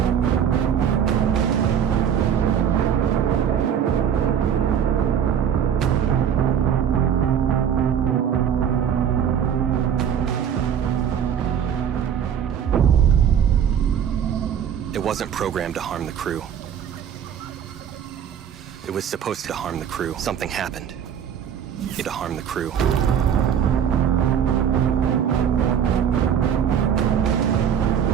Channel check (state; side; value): quieter; left; 8.6 dB